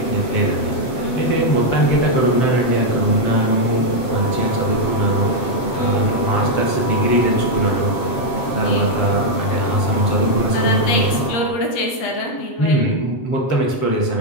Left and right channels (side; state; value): right; late; 7.8 ms